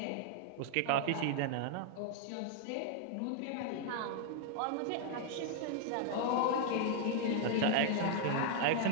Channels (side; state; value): both; different; correlation 0.00